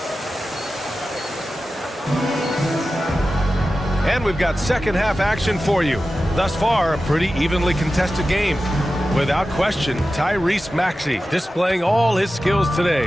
And we've got second half action for you. Thus far, a pretty evenly contested game. Without question, Tyrese Maxey displaying all his skills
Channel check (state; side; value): normal; both; correlation 0.94